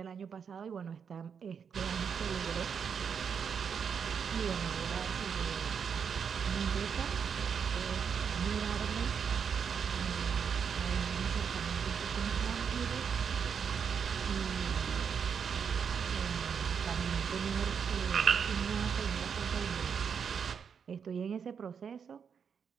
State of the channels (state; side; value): quieter; left; 6.9 dB